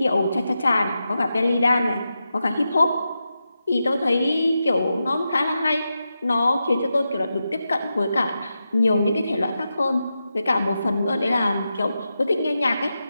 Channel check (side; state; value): both; inverted; correlation -0.89